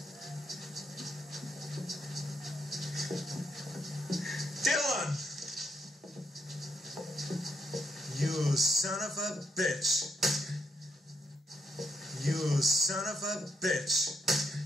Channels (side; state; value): both; normal; correlation 0.75